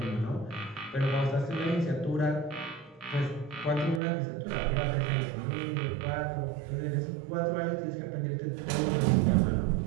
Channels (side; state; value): left; drops out; at 4.0 s